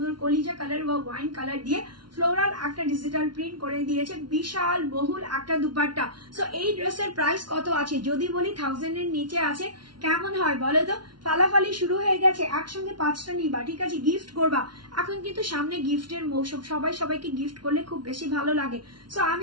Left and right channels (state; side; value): late; left; 0.71 ms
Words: কলিজা কালার বা ওয়াইন কালার দিয়ে ফ্লোরাল একটা ডিজিটাল প্রিন্ট করে দিয়েছে। বিশাল বহুল একটা দুপাট্টা। সো এই ড্রেসের প্রাইস কত আছে যদি বলি 1000 এর নিচে আছে। কেমন হয় বলো তো? ফালাফালি শুরু হয়ে গেছে, একসঙ্গে 5টা নিবা, ঠিক আছে, গিফট করবা। এখন কিন্তু সামনে গিফটের মৌসুম, সবাইকে গিফট করলে খুব বেশি ভালো লাগে। সো